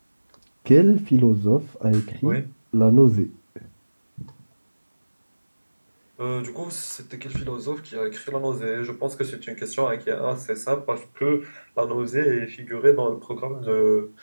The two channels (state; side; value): inverted; both; correlation -1.00